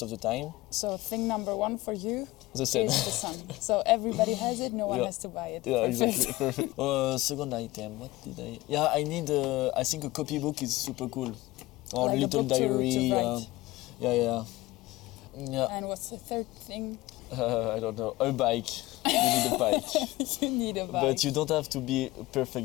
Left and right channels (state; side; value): quieter; right; 19.2 dB